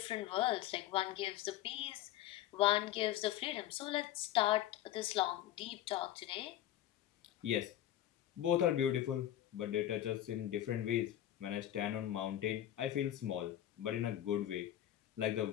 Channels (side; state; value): right; quieter; 12.6 dB